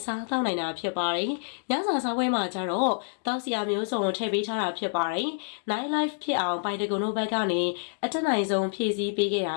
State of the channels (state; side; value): silent; right; digital silence